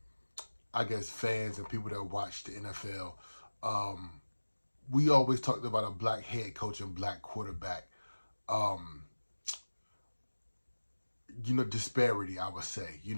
fans and people that watch the NFL. We always talked about a black head coach and black quarterback. Disparity, I would say.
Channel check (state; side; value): inverted; both; correlation -1.00